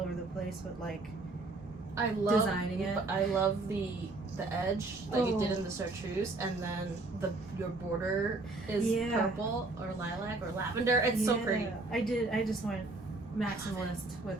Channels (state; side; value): quieter; left; 3.2 dB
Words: the place with like I love designing it. I love the edge that you did Oh. in the chartreuse, and then your border is Yeah. purple or lilac or lavender. It's so pretty. I just went maximalist